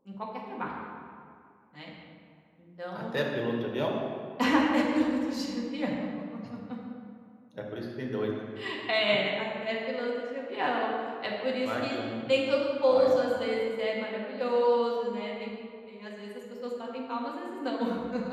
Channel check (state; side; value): identical; both; correlation 1.00